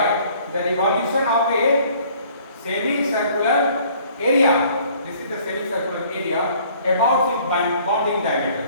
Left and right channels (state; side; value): inverted; both; correlation -0.57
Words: the revolution of a semicircular area. This is the semicircular area about its bonding diameter,